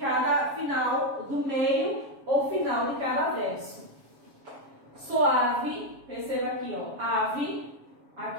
final, do meio ou final de cada verso. Suave, perceba aqui, ó, ave,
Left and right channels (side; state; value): left; late; 7.2 ms